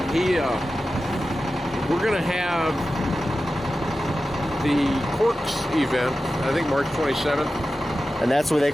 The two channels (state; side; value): normal; both; correlation 0.93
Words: We're going to have the Corks event, I think March 27th. And that's where they